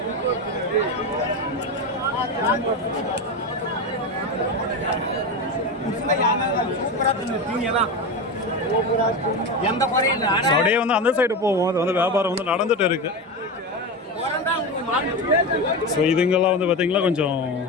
அப்படியே வந்து அந்த சைடு போவோம். அது வந்து வியாபாரம் வந்து நடந்துட்டு இருக்கு. ஸோ இதுங்கெல்லாம் வந்து பார்த்தீங்கன்னா கொஞ்சம்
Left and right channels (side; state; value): both; normal; correlation 0.20